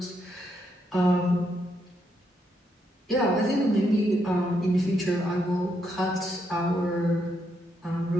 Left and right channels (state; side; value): normal; both; correlation 0.78